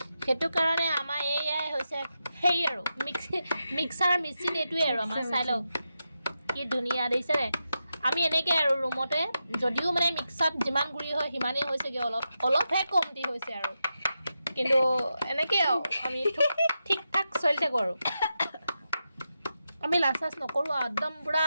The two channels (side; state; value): both; inverted; correlation -0.88